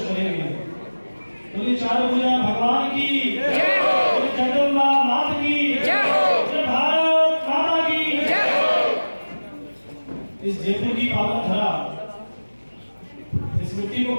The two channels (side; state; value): both; inverted; correlation -1.00